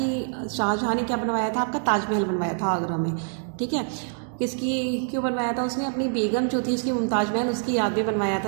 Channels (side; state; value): left; silent; digital silence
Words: शाहजहां ने क्या बनवाया था? आपका ताजमहल बनवाया था आगरा में। ठीक है, किसकी क्यों बनवाया था उसने? अपनी बेगम जो थी उसकी मुमताज महल, उसकी याद में बनवाया था